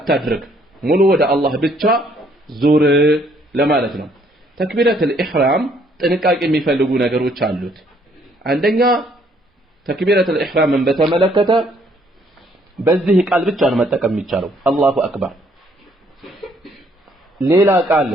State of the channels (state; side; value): normal; both; correlation 0.66